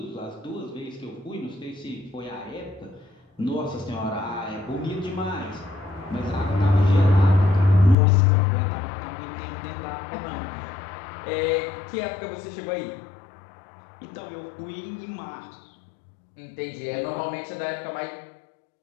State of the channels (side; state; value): right; drops out; at 8.0 s